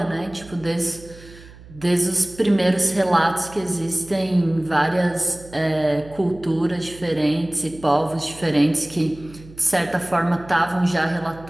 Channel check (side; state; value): right; noise; hum, 20 dB below the sound